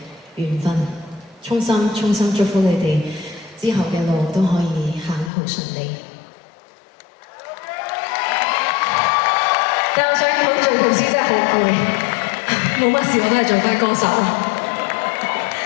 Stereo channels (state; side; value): drops out; right; at 5.3 s